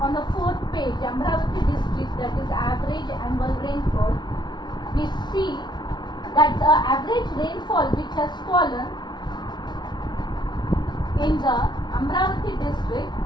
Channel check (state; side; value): late; right; 0.21 ms